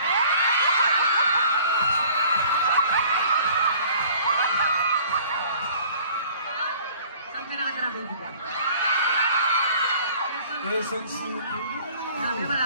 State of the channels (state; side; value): inverted; both; correlation -0.52